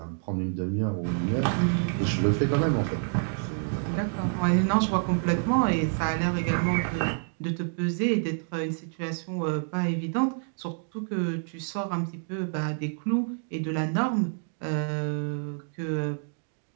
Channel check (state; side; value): silent; left; 58 dB below the other